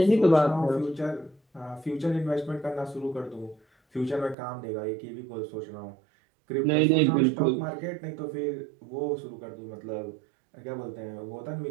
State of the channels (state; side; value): drops out; left; at 4.4 s